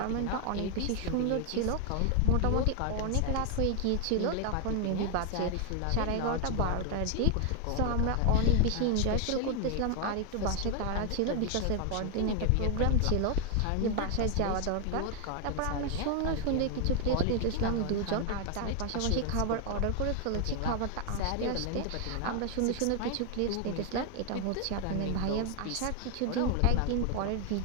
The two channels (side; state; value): both; different; correlation 0.00